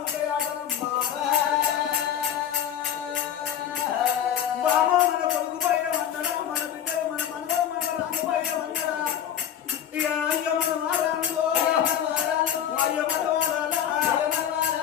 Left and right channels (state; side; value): quieter; right; 9.8 dB